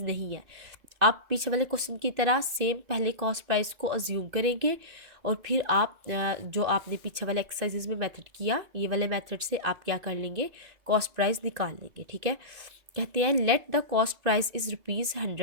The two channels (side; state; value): left; late; 2.7 ms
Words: नहीं है। आप पीछे वाले क्वेश्चन की तरह सेम पहले कॉस्ट प्राइस को अज्यूम करेंगे और फिर आप जो आपने पीछे वाले एक्सरसाइजेज में मेथड किया, ये वाले मेथड से आप क्या कर लेंगे, कॉस्ट प्राइस निकाल लेंगे, ठीक है। कहते हैं let the cost price is